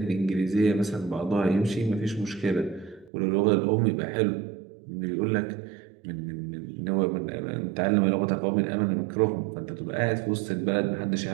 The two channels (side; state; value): left; drops out; at 3.1 s